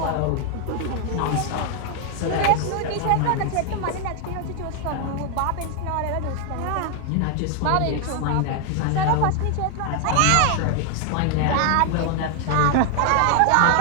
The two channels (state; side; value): different; both; correlation 0.00